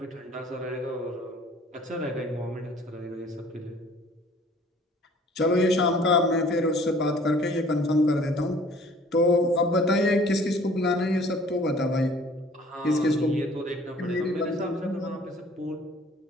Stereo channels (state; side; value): normal; both; correlation 0.53